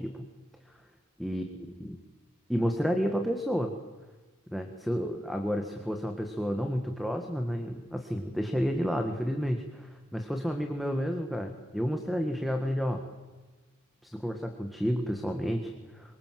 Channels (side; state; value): both; normal; correlation 0.92